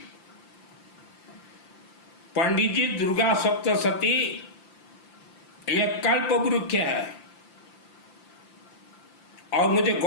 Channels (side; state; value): right; late; 5.8 ms